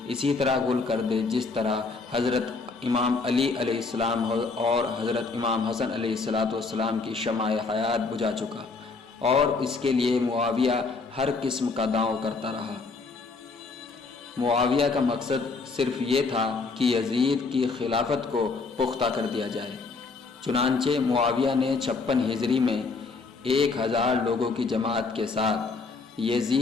اسی طرح گل کر دے جس طرح حضرت امام علی علیہ السلام اور حضرت امام حسن علیہ السلام کی شمع حیات بجھا چکا، اور اس کے لیے معاویہ ہر قسم کا داؤں کرتا رہا۔ معاویہ کا مقصد صرف یہ تھا کہ یزید کی خلافت کو پختہ کر دیا جائے۔ چنانچہ معاویہ نے 56 ہجری میں 1000 لوگوں کی جماعت کے ساتھ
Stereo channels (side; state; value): right; quieter; 4.2 dB